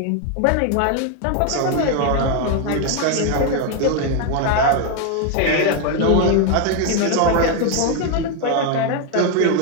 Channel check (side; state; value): both; different; correlation 0.01